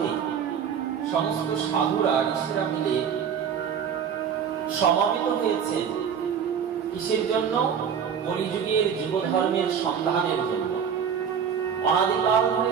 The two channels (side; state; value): left; quieter; 7.6 dB